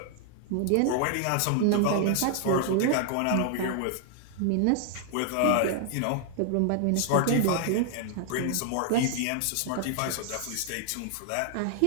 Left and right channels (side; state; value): both; different; correlation 0.00